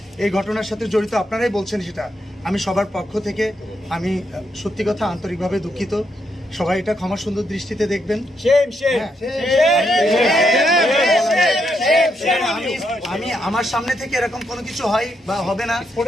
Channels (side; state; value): both; normal; correlation 0.79